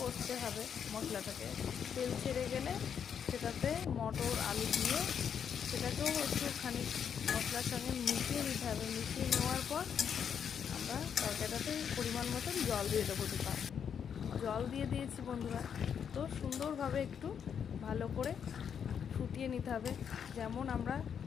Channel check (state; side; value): quieter; right; 7.7 dB